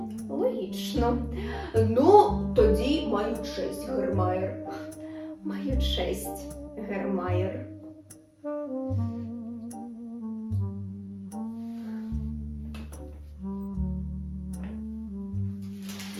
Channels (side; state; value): both; identical; correlation 1.00